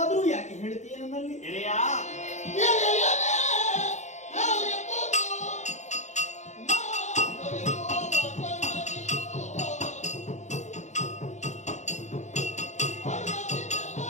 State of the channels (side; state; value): right; late; 0.34 ms